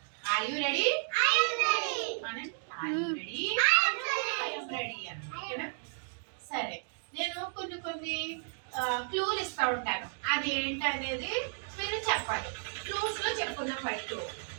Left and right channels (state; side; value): silent; left; 56 dB below the other